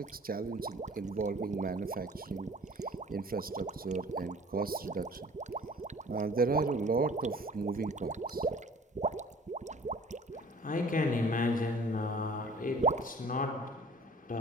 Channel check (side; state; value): both; normal; correlation 0.49